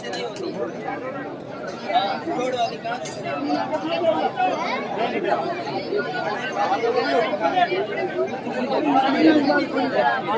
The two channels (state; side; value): identical; both; correlation 1.00